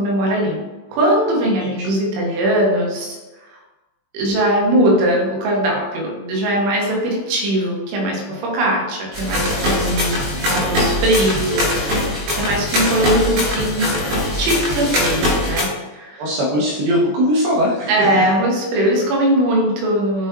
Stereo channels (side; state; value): left; late; 20 ms